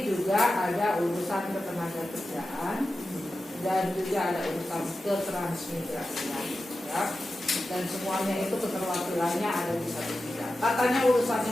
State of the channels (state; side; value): normal; both; correlation 0.92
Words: juga ada urusan ketenagakerjaan dan juga ada urusan ketransmigrasian, ya. Dan semuanya itu keterwakilannya ada di satu bidang. Katanya